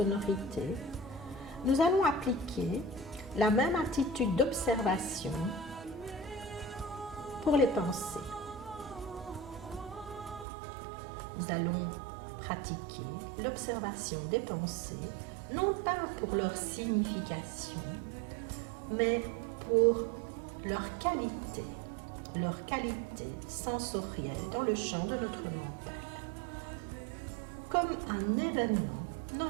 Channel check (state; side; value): drops out; left; at 10.5 s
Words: nous allons appliquer la même attitude d'observation pour les pensées. Nous allons pratiquer l'observation des pensées, non pas pour leur signification, mais pour leur qualité sensorielle dans le champ de notre mental, comme un événement